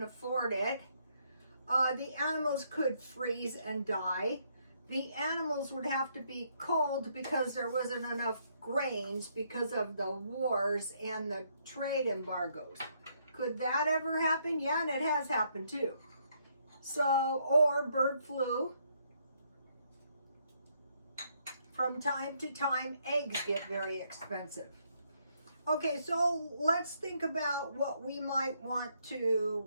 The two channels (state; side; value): inverted; both; correlation -0.72